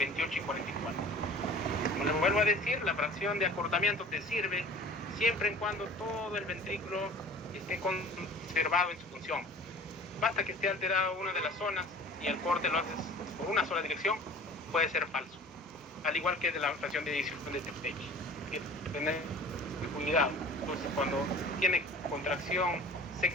y 44. Como les vuelvo a decir, la fracción de acortamiento te sirve siempre en cuando todo el ventrículo esté conservado en su función. Basta que esté alterada una de las zonas y el corte lo haces por una sola dirección, puede ser falso. Al igual que de la fracción de eyección de Tage. Hay que tener cuidado. Entonces, cuando tiene contracción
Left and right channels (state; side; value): normal; both; correlation 0.44